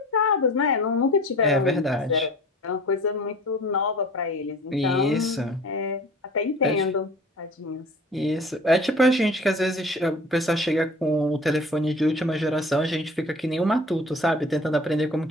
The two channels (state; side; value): normal; both; correlation 0.44